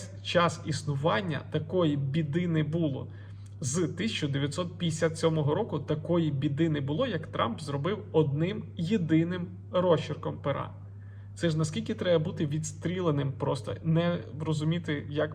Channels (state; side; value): identical; both; correlation 1.00